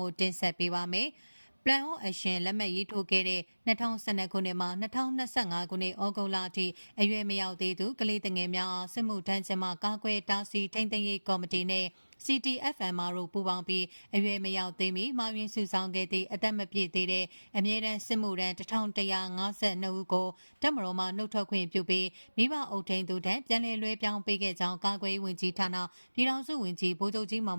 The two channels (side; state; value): both; inverted; correlation -1.00